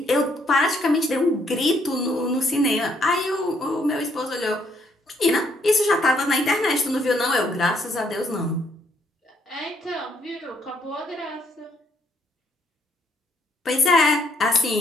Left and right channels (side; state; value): both; normal; correlation 0.70